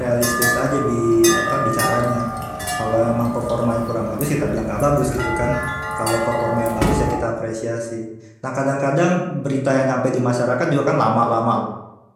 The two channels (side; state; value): both; identical; correlation 1.00